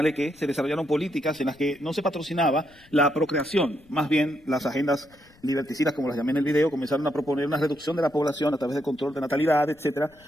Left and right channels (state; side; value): noise; left; rumble, 29 dB below the sound